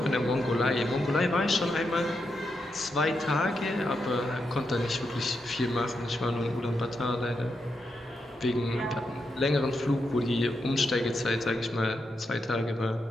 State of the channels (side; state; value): both; normal; correlation 0.84